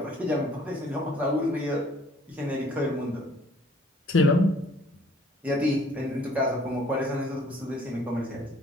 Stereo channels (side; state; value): both; normal; correlation 0.57